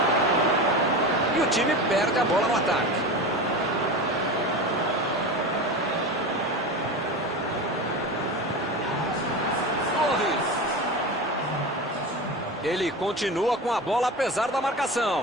E o time perde a bola no ataque. Torres. Ele continua com a bola apesar da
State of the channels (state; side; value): normal; both; correlation 0.27